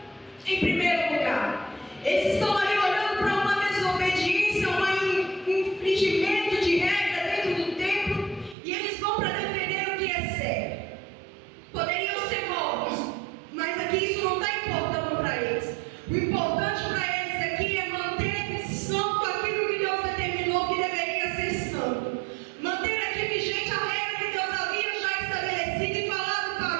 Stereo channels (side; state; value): left; drops out; at 8.6 s